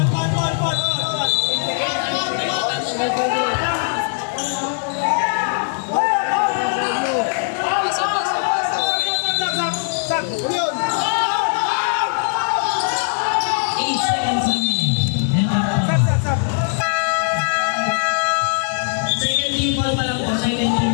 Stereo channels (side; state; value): right; silent; digital silence